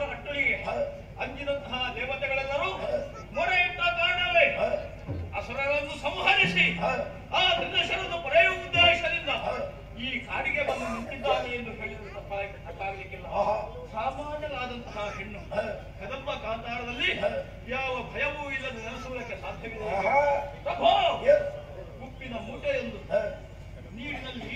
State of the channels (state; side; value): identical; both; correlation 1.00